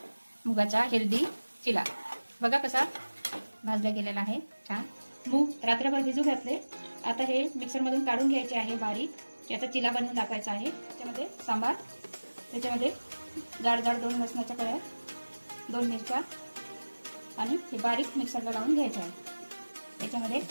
मुगाचा हेल्दी चिला। बघा कसा भाजला गेलेला आहे छान। मूग रात्रभर भिजू घातले, आता हे मिक्सरमधून काढून घ्यायचे आहे बारीक। याचा चिला बनवून दाखवायचा आहे। त्याच्यामध्ये सांबार, त्याच्यामध्ये जाड जाड 2 लसणाच्या कळ्या, 2 मिरच्या आणि हे बारीक मिक्सरला लावून घ्यायचे आहे। त्याच्यामध्ये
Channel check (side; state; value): both; inverted; correlation -1.00